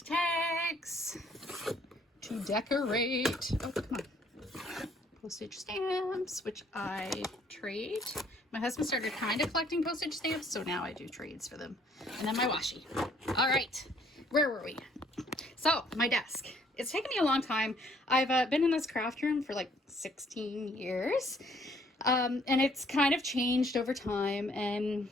tags to decorate. Oh, come on. Postage stamps, which I trade. My husband started kind of collecting postage stamps, so now I do trades for them. And then my washi. All right, where were we? So my desk. It's taken me a long time. I've been in this craft room for like 16 years. And it's kind of changed over time, and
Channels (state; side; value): normal; both; correlation 0.63